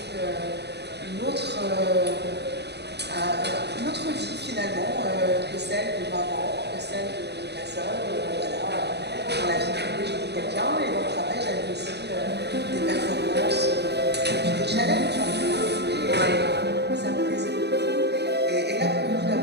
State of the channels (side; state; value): left; late; 0.49 ms